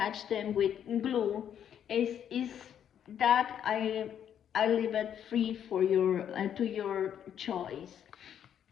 them with glue. Is that I leave it free for your to your choice.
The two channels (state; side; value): quieter; right; 9.3 dB